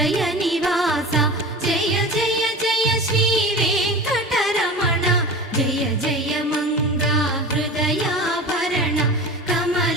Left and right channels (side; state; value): both; normal; correlation 0.33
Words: నివాస జయ జయ జయ శ్రీ వెంకటరమణ జయ జయ మంగ హృదయాభరణ